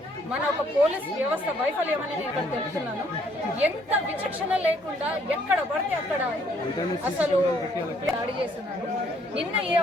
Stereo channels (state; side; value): normal; both; correlation 0.66